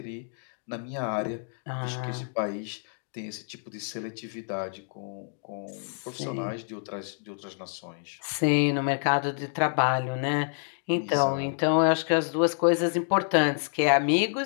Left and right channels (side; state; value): right; silent; 59 dB below the other